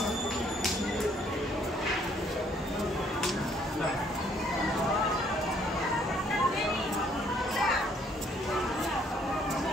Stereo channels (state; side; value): normal; both; correlation 0.65